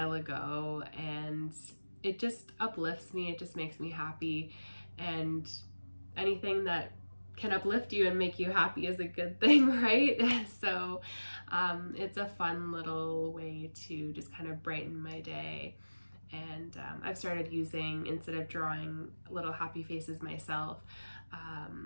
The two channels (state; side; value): inverted; both; correlation -1.00